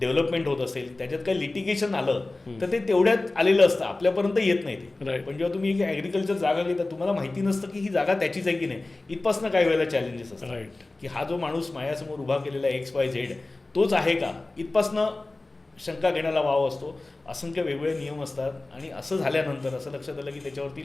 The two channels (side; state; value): right; quieter; 3.0 dB